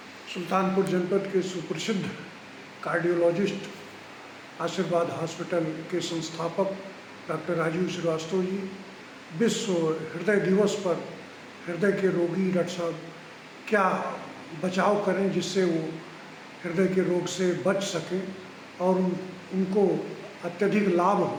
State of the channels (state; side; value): identical; both; correlation 1.00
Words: सुल्तानपुर जनपद के सुप्रसिद्ध कार्डियोलॉजिस्ट आशीर्वाद हॉस्पिटल के संस्थापक डॉक्टर राजीव श्रीवास्तव जी विश्व हृदय दिवस पर हृदय के रोगी डॉक्टर साहब क्या बचाव करें जिससे वो हृदय के रोग से बच सकें और उनको अत्यधिक लाभ